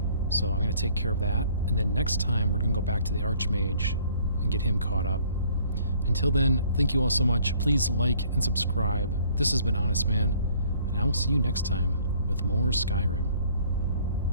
so I'm going to take care of that. And then next time we're going to go back to the Archmage and get him caught up. Until then, thank you all so much. Please like and subscribe. This has been Honestman, and I will see you next time with more Skyrim.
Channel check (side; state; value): both; inverted; correlation -0.59